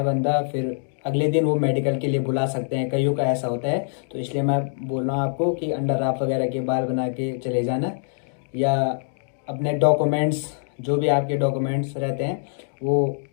बंदा, फिर अगले दिन वो मेडिकल के लिए बुला सकते हैं, कईयों का ऐसा होता है। तो इसलिए मैं बोल रहा हूँ आपको कि अंडर राफ वगैरह के बाल बना के चले जाना, या अपने डॉक्यूमेंट्स, जो भी आपके डॉक्यूमेंट्स रहते हैं वो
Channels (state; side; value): silent; right; digital silence